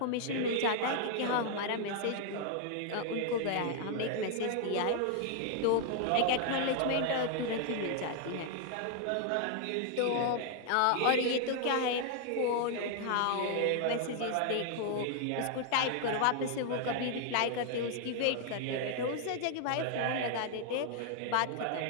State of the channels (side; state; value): both; different; correlation 0.00